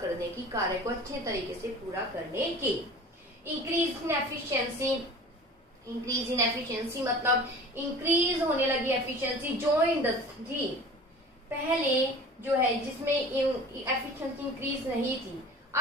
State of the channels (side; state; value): both; normal; correlation 0.41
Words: करने की, कार्य को अच्छे तरीके से पूरा करने की। Increase in efficiency, increase in efficiency मतलब इंक्रीज होने लगी एफिशिएंसी। जो इंडस्ट्री पहले जो है जिसमें एफिशिएंसी इंक्रीज नहीं थी,